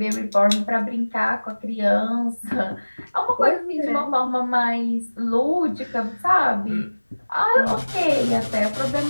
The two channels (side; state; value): both; inverted; correlation -1.00